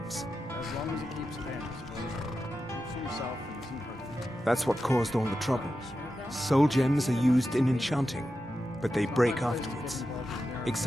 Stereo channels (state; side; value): normal; both; correlation 0.90